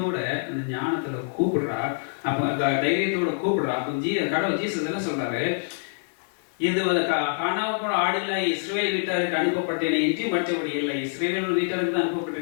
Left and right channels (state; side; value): silent; right; digital silence